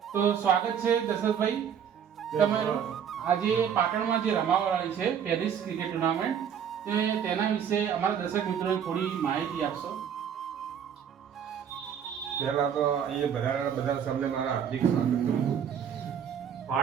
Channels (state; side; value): quieter; left; 8.2 dB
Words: તો સ્વાગત છે દશરથભાઈ તમારું. આજે પાટણમાં જે રમાવાળી છે પેરિસ ક્રિકેટ ટુર્નામેન્ટ, તેના વિશે અમારા દર્શક મિત્રોને થોડી માહિતી આપશો. પહેલા તો અહીંયા વધારાના બધા સામે મારા હાર્દિક સ્વાગત કરું છું.